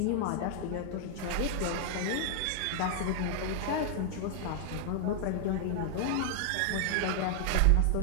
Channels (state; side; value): different; both; correlation 0.00